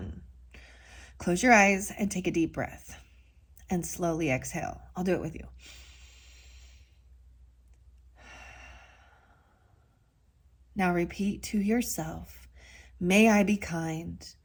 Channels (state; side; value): identical; both; correlation 1.00